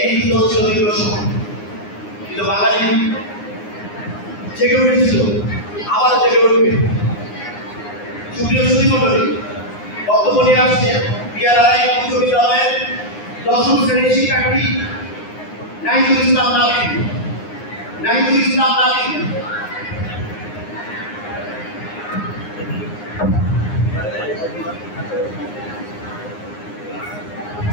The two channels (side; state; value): right; late; 9.7 ms